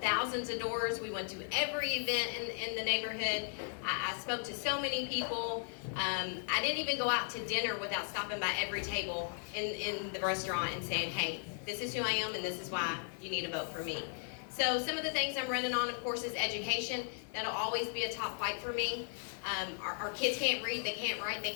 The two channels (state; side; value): silent; right; 54 dB below the other